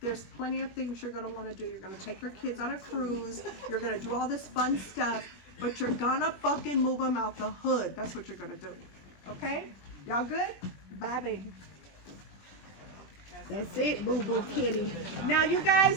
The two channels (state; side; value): late; right; 21 ms